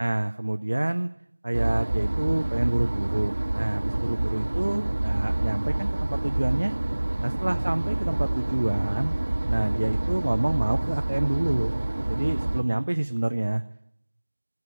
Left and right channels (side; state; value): both; inverted; correlation -1.00